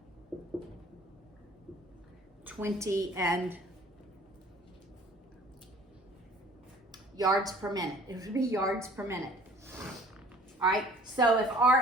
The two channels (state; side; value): normal; both; correlation 0.51